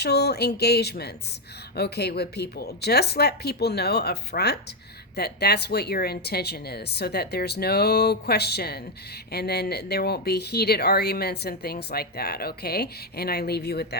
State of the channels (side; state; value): both; normal; correlation 0.04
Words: engagements, okay, with people, just let people know up front that that's what your intention is, so that there's no question, and then there won't be heated arguments and things like that, okay? And I leave you with